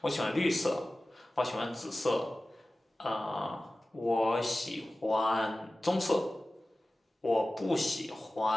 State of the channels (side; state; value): both; normal; correlation 0.96